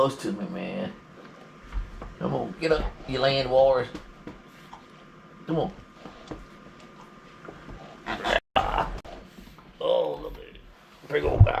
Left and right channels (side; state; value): both; identical; correlation 1.00